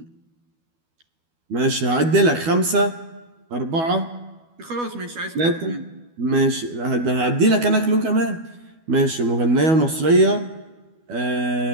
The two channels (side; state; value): left; late; 12 ms